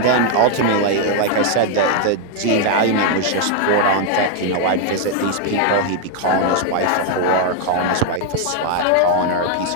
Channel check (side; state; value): both; different; correlation 0.00